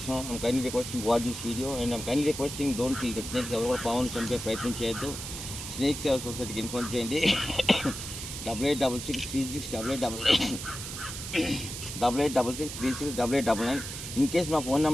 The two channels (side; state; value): right; noise; hiss, 8 dB below the sound